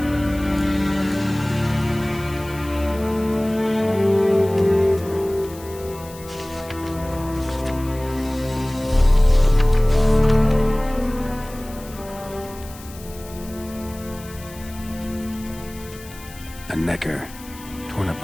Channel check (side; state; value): left; noise; hiss, 19 dB below the sound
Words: A Necker. Torn